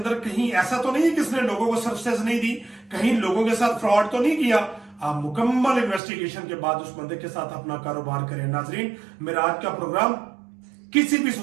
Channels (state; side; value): drops out; left; at 6.0 s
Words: कहीं ऐसा तो नहीं है कि इसने लोगों को सर्विसेज नहीं दी, कहीं लोगों के साथ फ्रॉड तो नहीं किया। आप मुकम्मल इन्वेस्टिगेशन के बाद उस बंदे के साथ अपना कारोबार करें। नाजरीन, मेरा आज का प्रोग्राम किसी भी